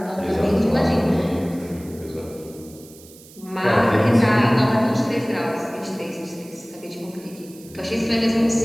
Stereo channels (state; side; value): noise; right; hiss, 22 dB below the sound